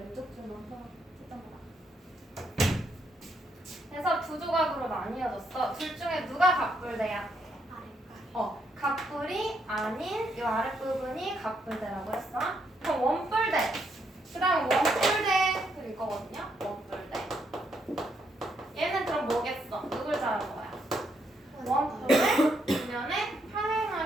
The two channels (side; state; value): both; normal; correlation 0.76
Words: 줄만 채점 보라. 그래서 두 조각으로 나뉘어졌어. 둘 중에 누가 각불대야? 각불이 아닌 이 아랫부분이 각불대라고 했어. 그럼 원뿔대. 그 다음 원뿔대 일 거거든요. 원뿔대. 얘는 그럼 뭐겠어? 누굴 자른 거야? 원뿔을 뒷면에